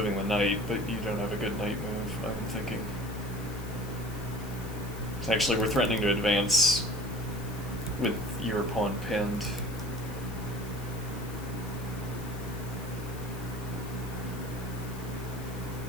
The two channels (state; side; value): noise; left; hiss, 17 dB below the sound